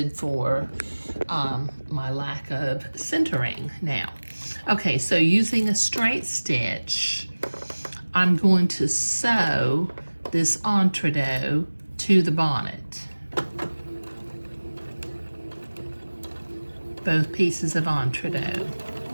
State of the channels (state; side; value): inverted; both; correlation -1.00